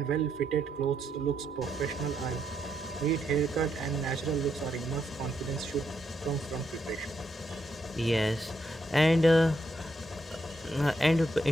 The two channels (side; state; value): both; normal; correlation 0.78